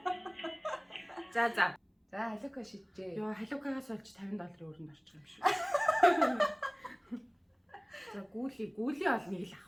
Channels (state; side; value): identical; both; correlation 1.00